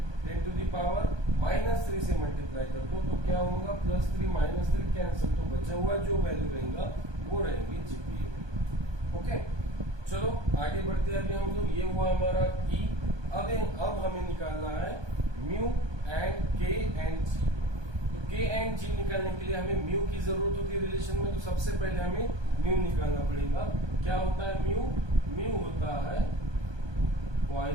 10 to the power -3 से मल्टीप्लाई कर दो तो क्या होगा +3 -3 कैंसिल, तो बचा हुआ जो वैल्यू रहेगा वो रहेगी जीपीए में। ओके चलो आगे बढ़ते हैं। अभी हम लोग, ये हुआ हमारा ई। अब हमें निकालना है म्यू एंड के एंड जी। तो के एंड जी निकालने के लिए हमें म्यू की जरूरत होती है रिलेशन में, तो सबसे पहले हमें म्यू निकालना पड़ेगा। क्या होता है म्यू? म्यू होता है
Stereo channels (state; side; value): late; left; 1.2 ms